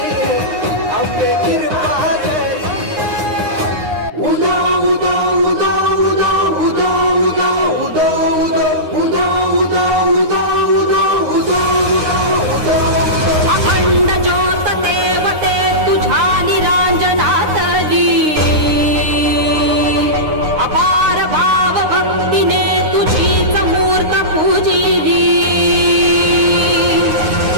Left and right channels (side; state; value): left; late; 9.7 ms